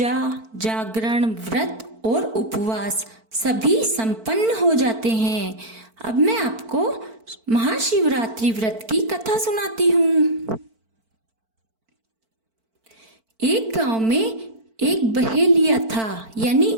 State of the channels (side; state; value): left; late; 4.5 ms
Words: जागरण, व्रत और उपवास सभी संपन्न हो जाते हैं। अब मैं आपको महाशिवरात्रि व्रत की कथा सुनाती हूँ। एक गांव में एक बहेलिया था, यानी